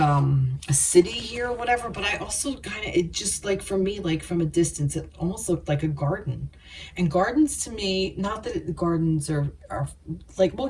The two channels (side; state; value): both; identical; correlation 1.00